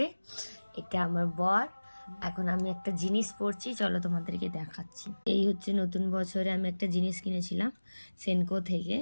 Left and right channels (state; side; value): inverted; both; correlation -1.00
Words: এটা আমার বর। এখন আমি একটা জিনিস পরছি, চলো তোমাদেরকে দেখাচ্ছি। এই হচ্ছে নতুন বছরে আমি একটা জিনিস কিনেছিলাম সেনকো থেকে,